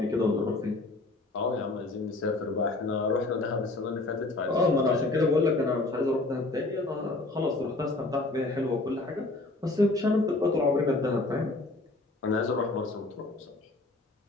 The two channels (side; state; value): right; quieter; 3.1 dB